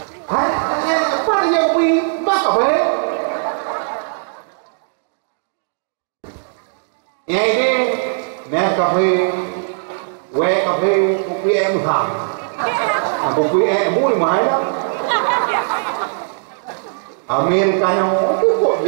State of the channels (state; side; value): silent; left; digital silence